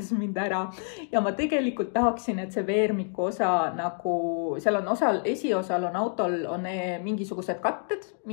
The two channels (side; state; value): right; silent; 57 dB below the other